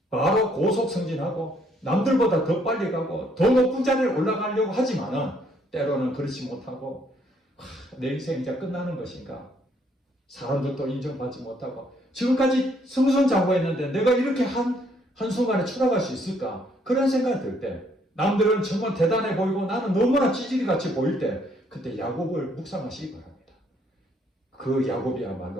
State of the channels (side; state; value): both; normal; correlation 0.68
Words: 바로 고속 승진하고 남들보다 더 빨리 가고 더 높은 자리에 올라가려고 하지만은 때로는 그렇지 못하고 내 인생 이제 끝나는 것인가? 사람들도 인정받지 못하고 지금까지 승승장구했는데 내가 이렇게 한순간에 추락할 수 있을까? 그런 생각이 들 때 남들은 정말 대단해 보이고 나는 너무나 찌질이같이 보일 때 그때 야곱을 묵상하시기 바랍니다. 그